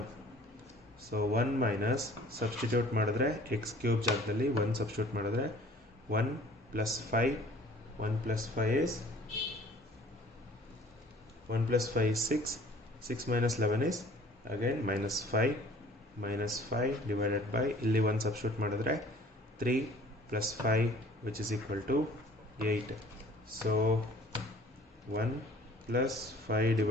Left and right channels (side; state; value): both; normal; correlation 0.52